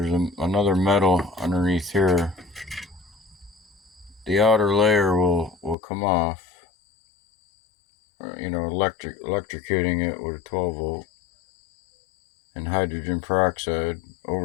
another metal underneath here. The outer layer will come off. Electrocuting it with a 12 volt and hydrogen peroxide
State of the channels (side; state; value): right; drops out; at 5.8 s